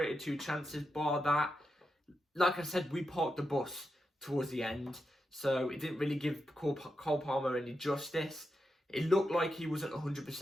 2 chances, bar that. Like I said, we parked the bus towards the end, so it didn't really give Cole Palmer any justice. It looked like he wasn't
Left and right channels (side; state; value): both; normal; correlation 0.87